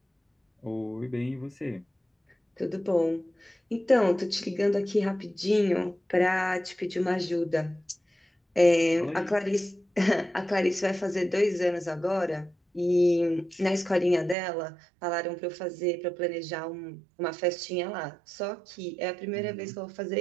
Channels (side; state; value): left; drops out; at 14.4 s